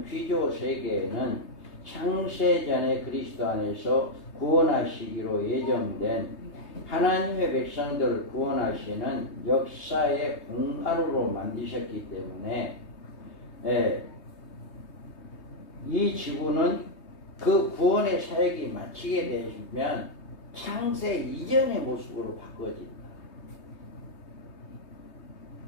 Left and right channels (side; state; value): right; late; 3.2 ms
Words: 피조 세계에는 창세전에 그리스도 안에서 구원하시기로 예정된 하나님의 백성들을 구원하시는 역사의 공간으로 만드셨기 때문에 이 지구는 그 구원의 사역이 마치게 되면 창세 이전의 모습으로 바꿔집니다.